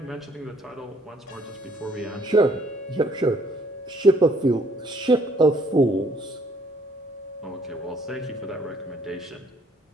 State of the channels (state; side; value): normal; both; correlation 0.64